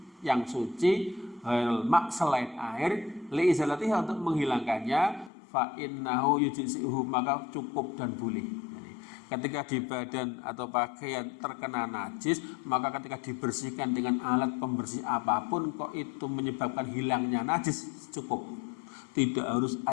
yang suci, mak, selain air, li izalatiha, untuk menghilangkannya, fa innahu yujzi'uhu, maka cukup dan boleh. Ketika di badan atau pakaian terkena najis, maka ketika dibersihkan dengan alat pembersih apapun, kok itu menyebabkan hilangnya najis, cukup. Tidak harus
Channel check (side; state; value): right; drops out; at 5.3 s